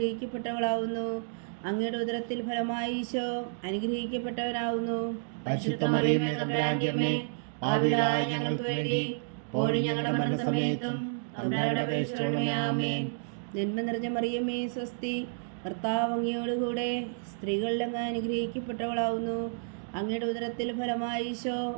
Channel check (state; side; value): silent; left; digital silence